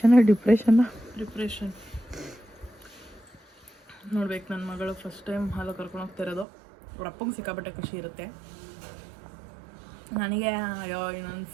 ನೋಡ್ಬೇಕು. ನನ್ನ ಮಗಳು ಫಸ್ಟ್ ಟೈಮ್ ಹಾಲು ಕರ್ಕೊಂಡು ಹೋಗ್ತಾ ಇರೋದು. ಅವ್ರ ಅಪ್ಪಂಗೆ ಸಿಕ್ಕಾಪಟ್ಟೆ ಖುಷಿ ಇರುತ್ತೆ. ನನಗೆ ಇನ್ನೊಂದು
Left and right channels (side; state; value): left; drops out; at 6.5 s